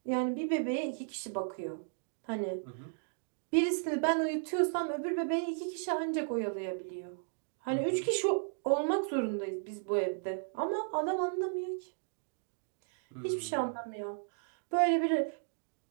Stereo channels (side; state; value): left; silent; digital silence